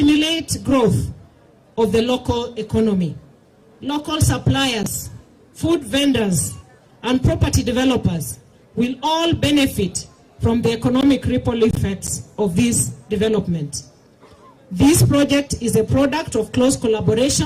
growth of the local economy. Local suppliers, food vendors, and property developers will all benefit from the economic ripple effects of this development. This project is a product of close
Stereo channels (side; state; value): both; identical; correlation 1.00